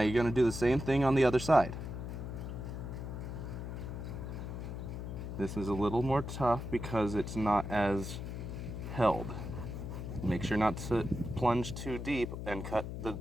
you're going to do the same thing on the other side. This is a little more tough because it's not as held. Make sure not to plunge too deep and cut the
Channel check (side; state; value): left; noise; hum, 6 dB below the sound